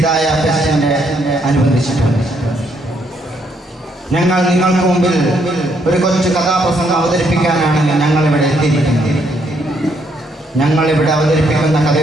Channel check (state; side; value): normal; both; correlation 0.72